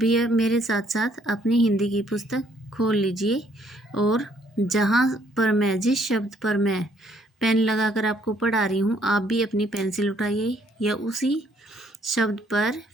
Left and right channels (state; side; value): normal; both; correlation 0.66